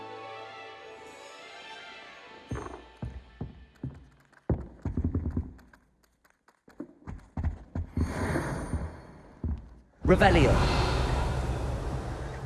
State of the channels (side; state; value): both; identical; correlation 1.00